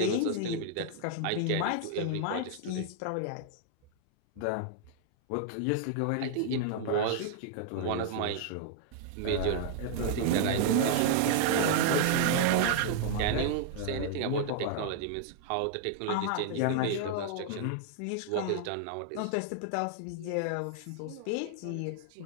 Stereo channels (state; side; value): different; both; correlation -0.01